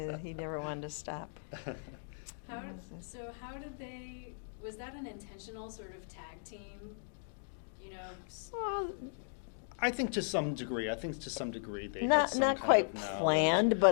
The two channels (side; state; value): right; silent; digital silence